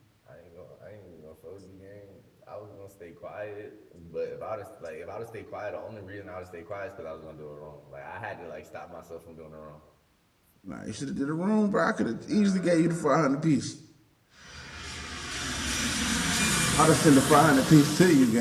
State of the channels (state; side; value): identical; both; correlation 1.00